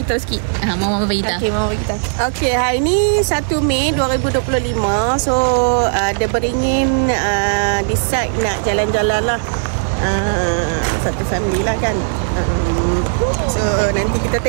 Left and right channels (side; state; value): left; silent; 68 dB below the other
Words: tahu sikit. Mama bagi tahu. Okay, Mama bagi tahu. Okey, hari ni 1 Mei 2025. So, dia beringin decide nak jalan-jalan lah. Satu family lah kan. So, nanti kita